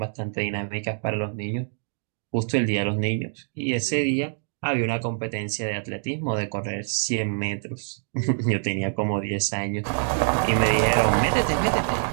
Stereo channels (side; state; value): left; silent; digital silence